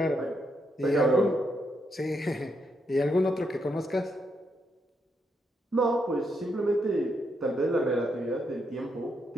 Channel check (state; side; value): normal; both; correlation 0.79